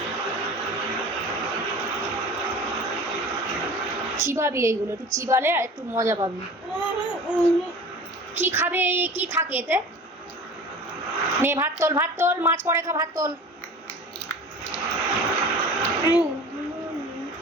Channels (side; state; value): both; normal; correlation 0.39